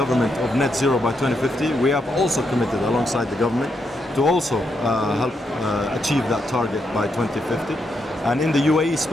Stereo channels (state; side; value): normal; both; correlation 0.80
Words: of net zero by 2050, we have also committed alongside the government to also help achieve that target by 2050. And in the UAE